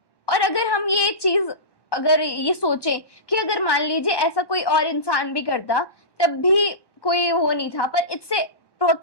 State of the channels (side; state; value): right; late; 1.1 ms